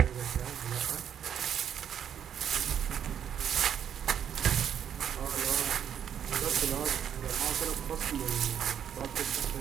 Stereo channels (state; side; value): quieter; left; 8.9 dB